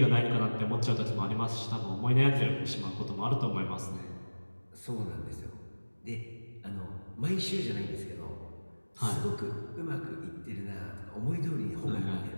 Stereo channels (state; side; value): inverted; both; correlation -1.00